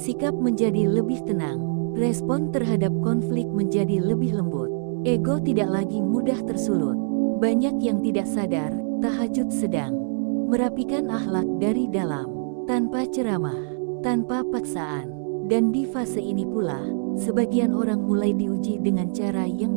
menjadi lebih tenang, respon terhadap konflik menjadi lebih lembut, ego tidak lagi mudah tersulut. Banyak yang tidak sadar, tahajud sedang merapikan akhlak dari dalam, tanpa ceramah, tanpa paksaan. Dan di fase ini pula, sebagian orang mulai diuji dengan cara yang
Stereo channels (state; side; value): silent; left; digital silence